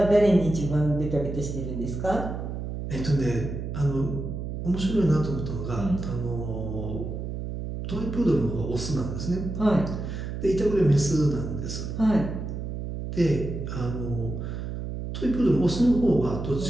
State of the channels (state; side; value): noise; right; hum, 6 dB below the sound